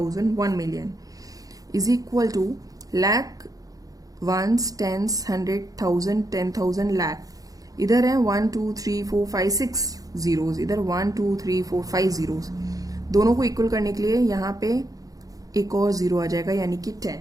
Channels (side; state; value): left; late; 0.17 ms